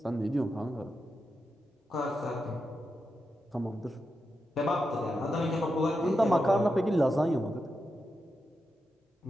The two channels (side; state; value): both; normal; correlation 0.87